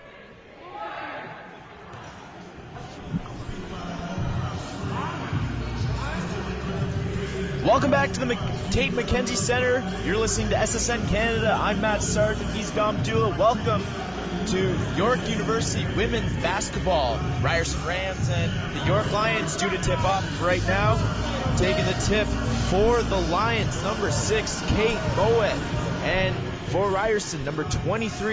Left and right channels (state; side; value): identical; both; correlation 1.00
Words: Welcome back to the Tate McKenzie Center. You're listening to SSN Canada. I'm Matt Sargent. He's Dom Dula. Welcome to York University women's basketball. Ryerson Rams and the York Lions due to tip off right now. Taking the tip for the Lions, number 6, Kate Moet. And for Ryerson, number